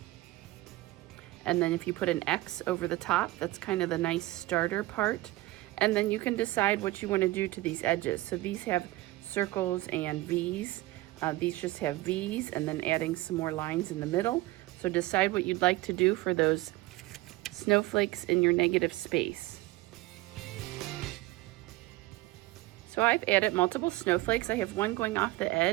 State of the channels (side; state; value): left; quieter; 18.9 dB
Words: And then if you put an X over the top, that's kind of the nice starter part. And then you can decide what you want to do to these edges. So these have circles and V's. These just have V's, and then adding some more lines in the middle. So decide what you'd like to do for those snowflakes in your negative space. So I've added multiple snowflakes. I have one going off the